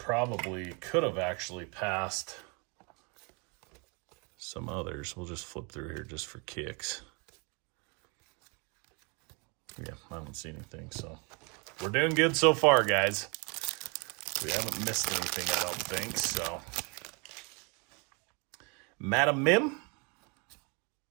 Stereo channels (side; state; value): left; quieter; 32.3 dB